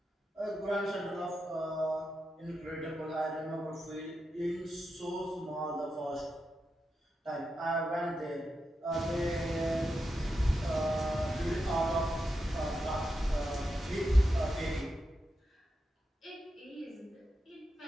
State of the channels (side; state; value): both; normal; correlation 0.88